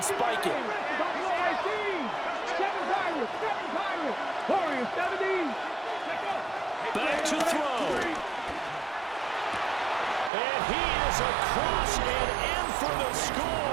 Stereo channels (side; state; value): left; drops out; at 10.3 s